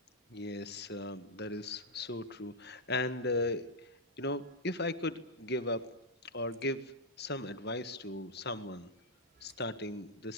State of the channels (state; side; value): normal; both; correlation -0.03